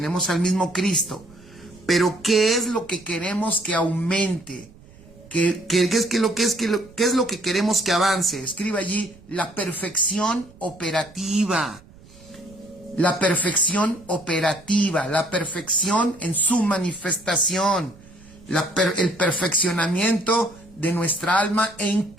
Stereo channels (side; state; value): right; noise; rumble, 24 dB below the sound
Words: al mismo Cristo, pero ¿qué es lo que queremos que aumente? ¿Qué es lo que queremos que avance? Escribe allí la perfección operativa. La perfección operativa, la perfección en su manifestación, el perfeccionamiento de nuestra alma en